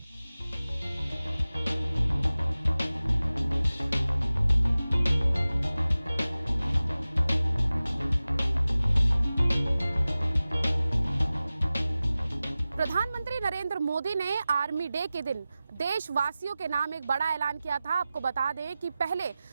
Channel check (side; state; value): both; inverted; correlation -0.96